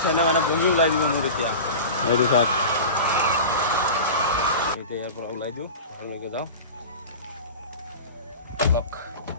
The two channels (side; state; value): both; inverted; correlation -0.32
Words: চেণ্টে মানে বহি ওলাই দিব মোৰ এতিয়া এইটো চাওক এতিয়া ইয়াৰ পৰা ওলাই দিওঁ ঘৰলৈকে যাওঁ অলপ